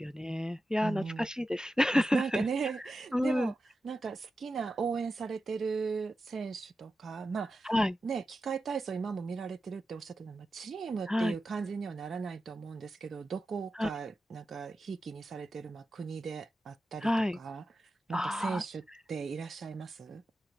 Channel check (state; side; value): normal; both; correlation 0.91